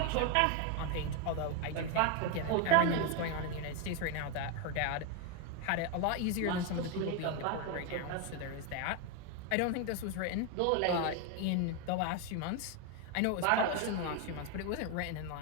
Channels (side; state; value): both; different; correlation 0.01